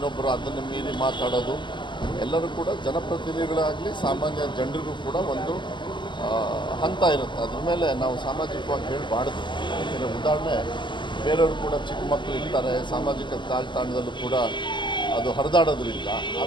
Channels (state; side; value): late; right; 0.23 ms